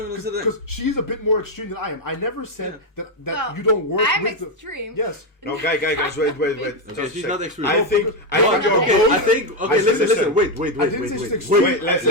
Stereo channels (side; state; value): both; normal; correlation 0.05